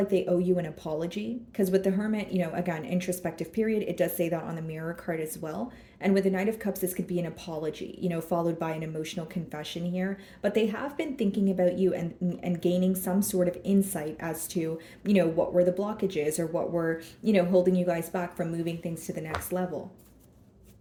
they owe you an apology because with the Hermit, again, introspective period, it does say that on the Mirror card as well. And with the Knight of Cups, this could be an apology, followed by an emotional confession here. But they have been thinking about you and gaining some sort of insight as to, what were the blockages or what were, holding you guys back from moving things to the next level.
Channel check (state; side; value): identical; both; correlation 1.00